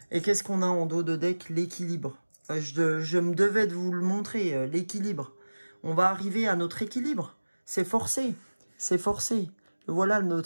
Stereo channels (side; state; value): both; inverted; correlation -1.00